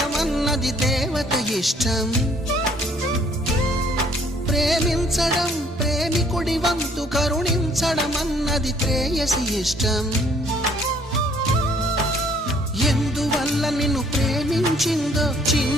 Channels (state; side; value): normal; both; correlation 0.62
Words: అన్నది దేవత ఇష్టం. ప్రేమించడం ప్రేమికుడి వంతు కరుణించడం అన్నది ప్రేయసి ఇష్టం. ఎందువల్ల నిన్ను ప్రేమించిందో